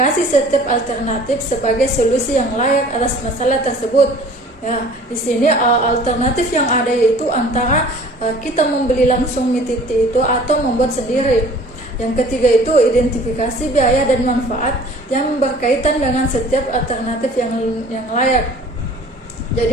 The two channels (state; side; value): normal; both; correlation 0.49